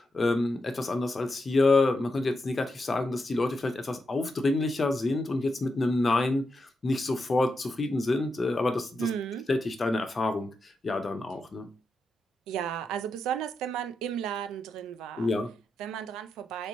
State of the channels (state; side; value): normal; both; correlation 0.86